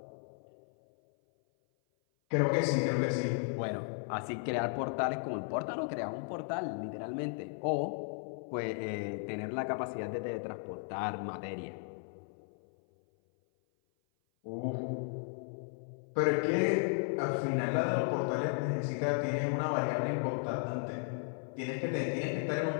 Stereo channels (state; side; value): silent; right; 54 dB below the other